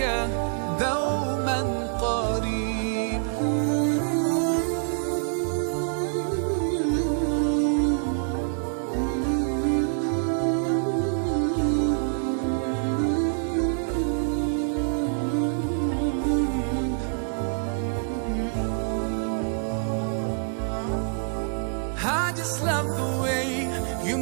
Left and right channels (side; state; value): left; silent; digital silence